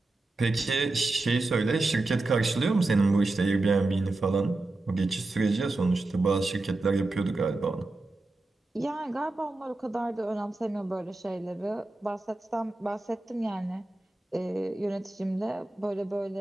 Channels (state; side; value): quieter; left; 3.0 dB